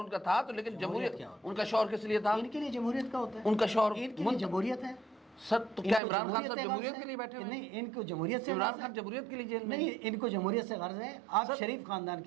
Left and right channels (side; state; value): left; drops out; at 6.0 s